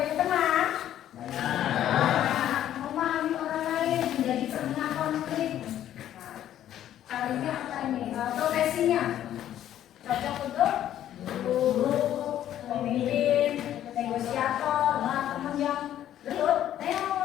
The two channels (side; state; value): right; quieter; 11.6 dB